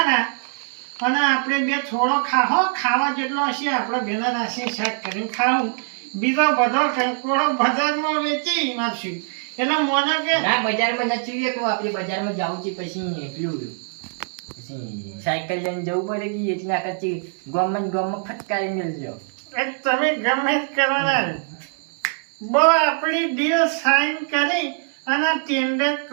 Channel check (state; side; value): silent; left; 60 dB below the other